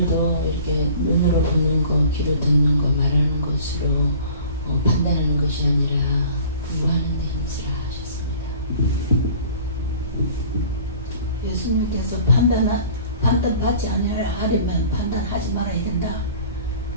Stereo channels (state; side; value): inverted; both; correlation -0.47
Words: 이렇게 눈으로 보는 거, 귀로 듣는 거, 말하는 것으로 판단하는 것이 아니라 공부하는 데 힘쓰라 하셨습니다. 예수님께서 판단받지 않으려면 판단하지 말아야 된다.